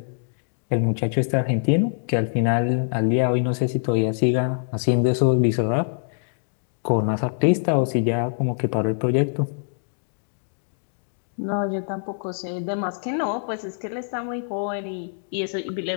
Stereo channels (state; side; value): silent; right; digital silence